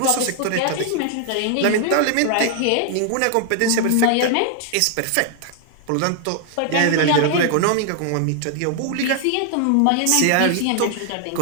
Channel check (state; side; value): different; both; correlation 0.00